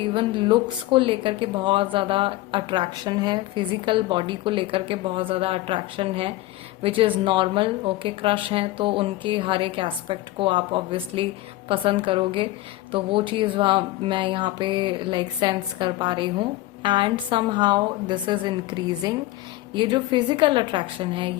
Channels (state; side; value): quieter; right; 17.3 dB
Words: लुक्स को लेकर के बहुत ज़्यादा अट्रैक्शन है, फिजिकल बॉडी को लेकर के बहुत ज़्यादा अट्रैक्शन है, which is normal. Okay, crush हैं तो उनके हर एक एस्पेक्ट को आप ऑब्वियसली पसंद करोगे, तो वो चीज़ मैं यहाँ पे लाइक सेंस कर पा रही हूँ। And somehow this is increasing. ये जो फिजिकल अट्रैक्शन है